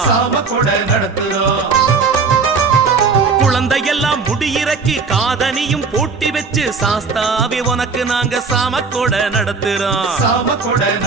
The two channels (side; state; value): left; quieter; 4.8 dB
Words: குழந்தையெல்லாம் முடியிறக்கி காதனியும் போட்டி வச்சு சாஸ்தாவே உனக்கு நாங்க சாம கொடை நடத்துறோம்